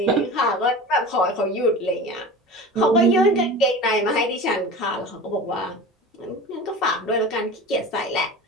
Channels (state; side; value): normal; both; correlation 0.35